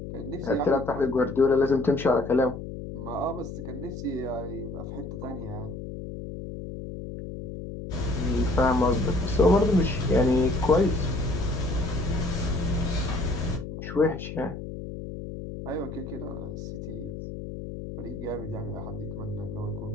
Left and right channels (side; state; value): left; noise; hum, 8 dB below the sound